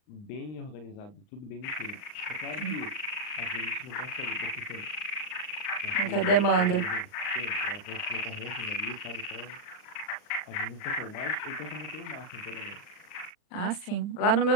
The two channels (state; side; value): late; right; 39 ms